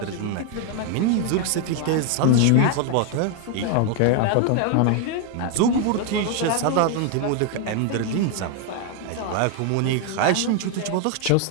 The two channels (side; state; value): both; different; correlation 0.00